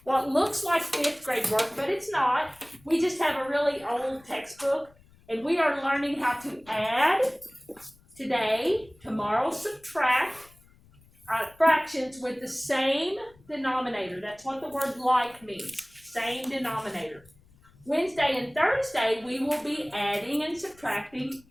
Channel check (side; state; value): left; noise; rumble, 28 dB below the sound